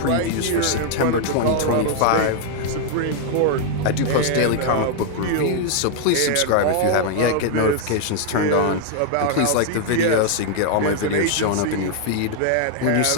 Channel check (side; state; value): both; different; correlation 0.00